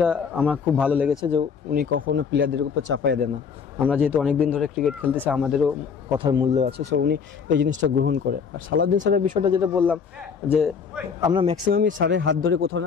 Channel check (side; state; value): right; quieter; 6.2 dB